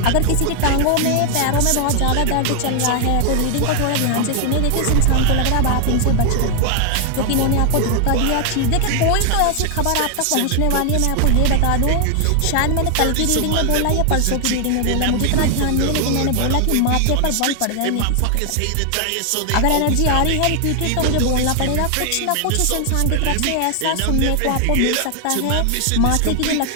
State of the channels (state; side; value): different; both; correlation 0.00